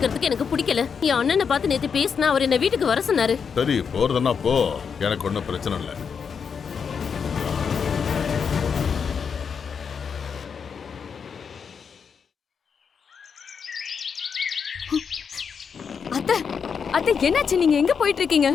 எனக்கு பிடிக்கல. என் அண்ணனை பார்த்து நேத்து பேசினா அவர் என்ன வீட்டுக்கு வர சொன்னாரு. சரி, போறதுன்னா போ, எனக்கு ஒன்றும் பிரச்சனை இல்லை. அத்தை அத்தை என்னாச்சு? நீங்க எங்க போயிட்டு இருக்கீங்க?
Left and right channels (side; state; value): right; quieter; 6.4 dB